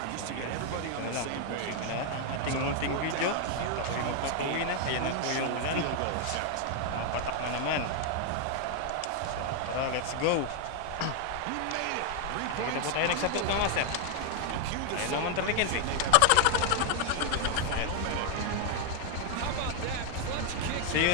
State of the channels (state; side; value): different; both; correlation 0.00